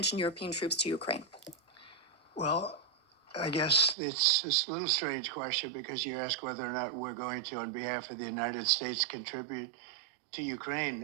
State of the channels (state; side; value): drops out; left; at 4.0 s